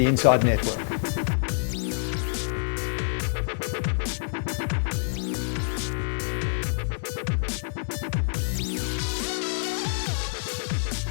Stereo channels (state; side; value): silent; right; digital silence